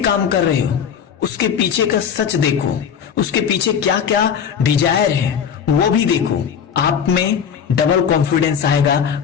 काम कर रहे हो उसके पीछे का सच देखो, उसके पीछे क्या क्या डिजायर है वो भी देखो। आप में डबल कॉन्फिडेंस आएगा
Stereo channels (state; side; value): quieter; right; 7.6 dB